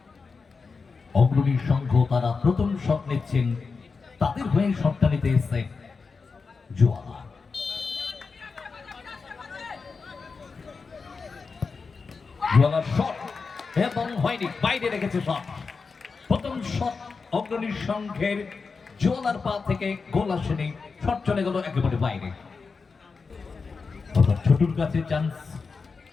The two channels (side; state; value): right; quieter; 4.8 dB